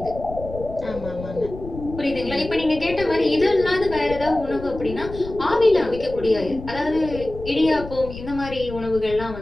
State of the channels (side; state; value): left; noise; rumble, 12 dB below the sound